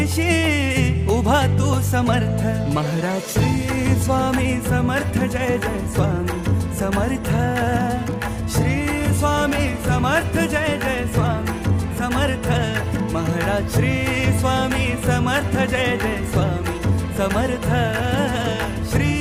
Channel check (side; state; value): both; identical; correlation 1.00